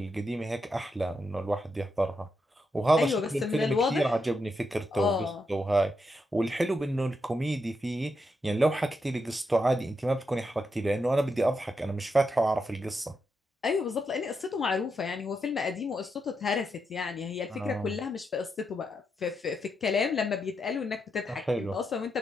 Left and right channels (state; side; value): normal; both; correlation 0.83